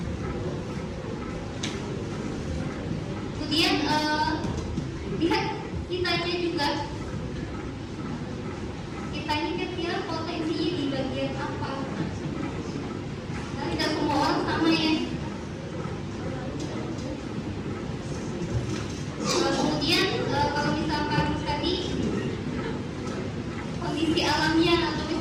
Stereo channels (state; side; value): identical; both; correlation 1.00